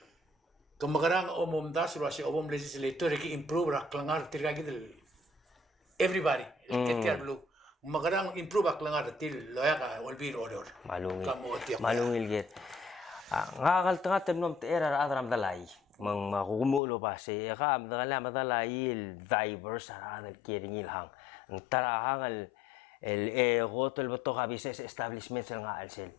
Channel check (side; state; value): right; drops out; at 16.8 s